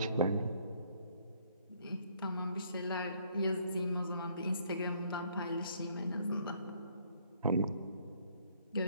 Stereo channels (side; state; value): both; inverted; correlation -0.65